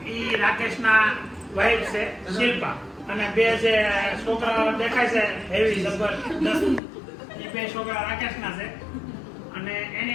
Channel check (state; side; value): drops out; right; at 6.8 s